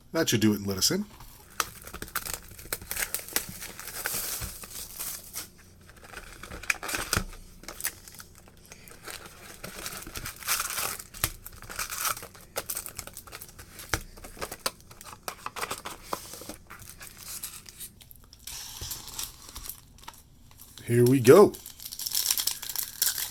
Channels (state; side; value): identical; both; correlation 1.00